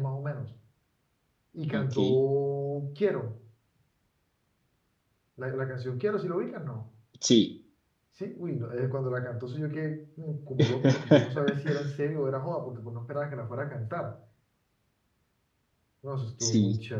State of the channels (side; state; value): both; identical; correlation 1.00